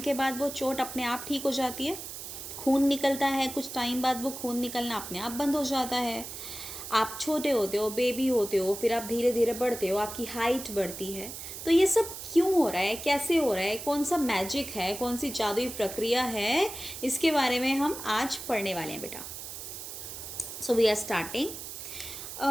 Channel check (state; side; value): noise; right; hiss, 9 dB below the sound